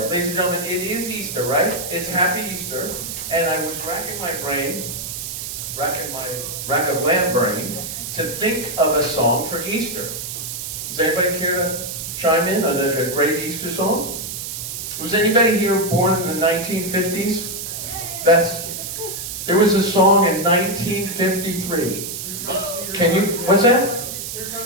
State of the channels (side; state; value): right; noise; hiss, 6 dB below the sound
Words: Ladies and gentlemen, it is Easter, right? It's Happy Easter, and I was racking my rack of lamb brain to think of a song for Easter. Does anybody care to chime in on a great Easter song? Was anybody here born in the 1950s? There was a song in 1953. Can you, what's that? Here